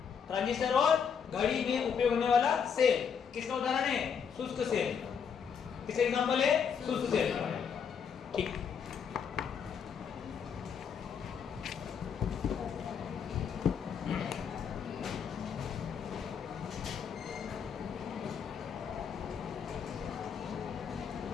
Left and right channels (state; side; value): quieter; right; 6.9 dB